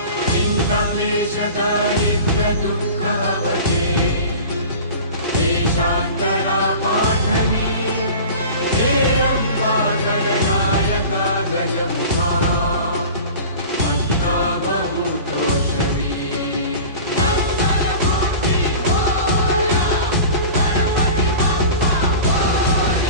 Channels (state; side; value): inverted; both; correlation -0.37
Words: चिन्ताक्लेश दारिद्र्य दुःखहवते देशान्तरा पाठनी हे अम्बा गणनायका गजमुखा मन्ता